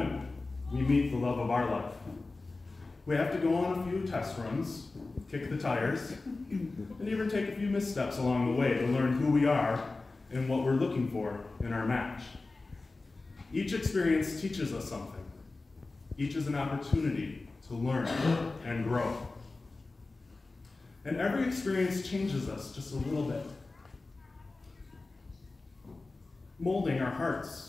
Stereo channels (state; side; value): quieter; right; 3.5 dB